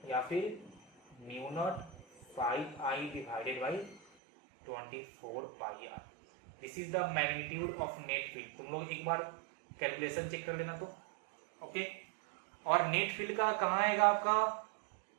या फिर μ0 5I divided by 24πr। This is the magnitude of net field. तुम लोग एक बार कैलकुलेशन चेक कर लेना तो ओके। और नेट फील्ड का कहाँ आएगा आपका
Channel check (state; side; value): drops out; left; at 4.0 s